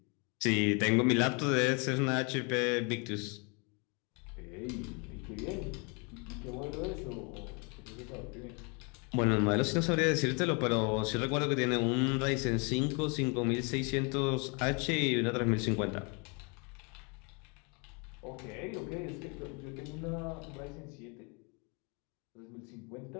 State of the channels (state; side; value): quieter; right; 33.2 dB